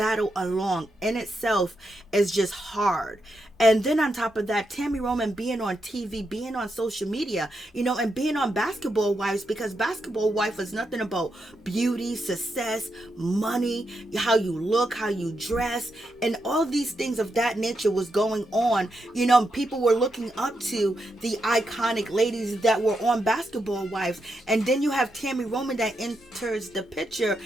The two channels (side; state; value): both; normal; correlation 0.84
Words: alone. In itself is just hard. And then on top of that, Tami Roman being on TV, being on social media, and being on Basketball Wives, because Basketball Wife is nothing about beauty, success, money, how you look, how you dress, and all these things of that nature was going on. People were looking up to the iconic ladies that were on Basketball Wives. And then you have Tami Roman that enters the picture,